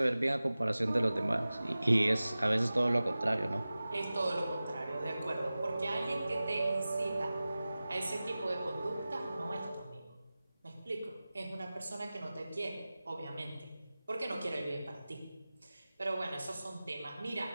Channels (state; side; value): inverted; both; correlation -0.97